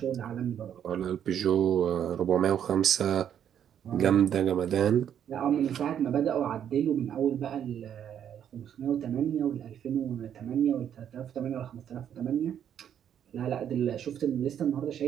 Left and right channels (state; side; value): quieter; left; 9.3 dB